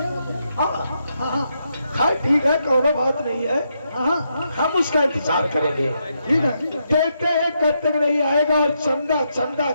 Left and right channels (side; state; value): both; inverted; correlation -0.81